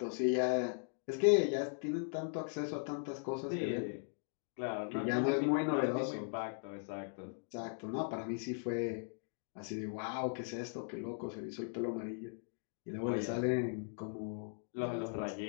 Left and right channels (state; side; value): silent; right; digital silence